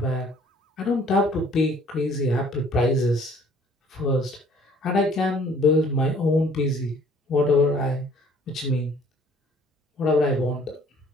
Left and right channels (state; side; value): normal; both; correlation 0.56